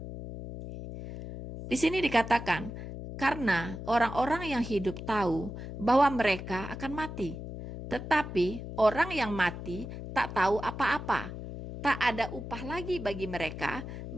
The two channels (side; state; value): left; noise; hum, 9 dB below the sound